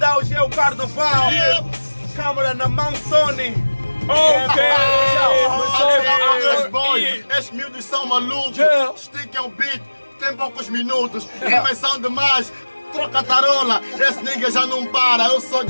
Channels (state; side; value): inverted; both; correlation -1.00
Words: hoje é o carnaval. Câmara na mão, Sony. Estes miúdos são malucos. Stick é um beat, tem poucos minutos. Rimas são demais. Troca tarola, esse nigga já não para, eu sou